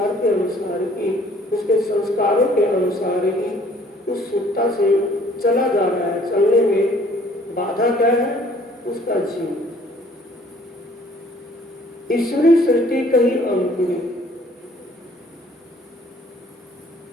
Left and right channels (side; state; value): both; normal; correlation 0.57